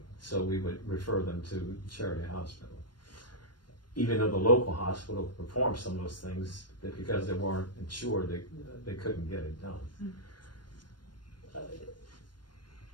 So we would refer them to charity hospital. Even though the local hospital performed some of those things, that because they weren't insured, they couldn't get it done.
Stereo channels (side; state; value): right; late; 0.71 ms